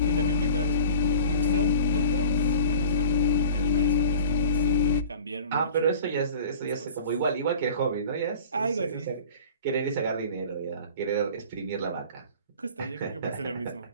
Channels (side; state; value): both; inverted; correlation -0.41